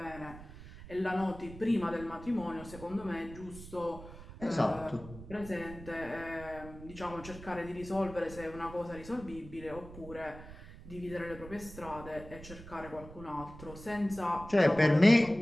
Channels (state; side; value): noise; right; rumble, 15 dB below the sound